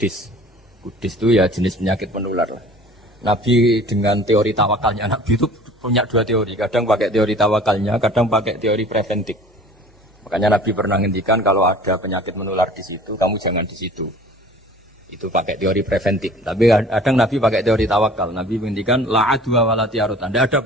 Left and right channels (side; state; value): both; normal; correlation 0.47